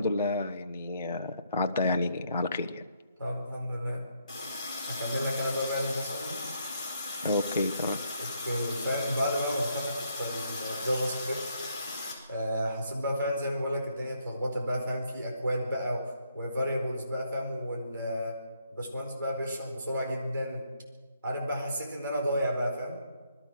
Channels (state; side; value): inverted; both; correlation -0.73